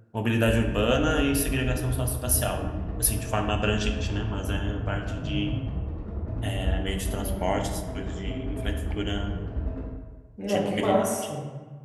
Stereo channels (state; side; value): identical; both; correlation 1.00